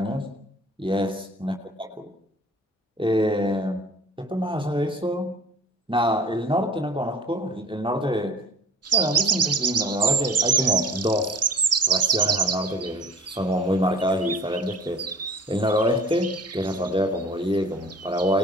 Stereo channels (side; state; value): both; normal; correlation 0.43